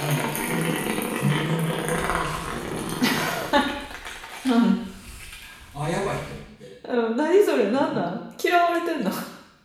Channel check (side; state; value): both; identical; correlation 1.00